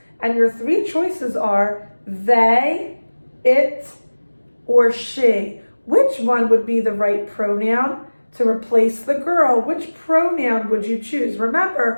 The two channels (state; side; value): inverted; both; correlation -1.00